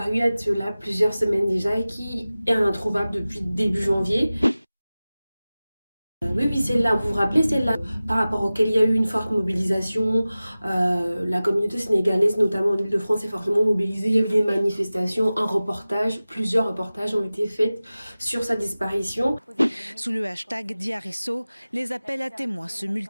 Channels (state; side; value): inverted; both; correlation -0.97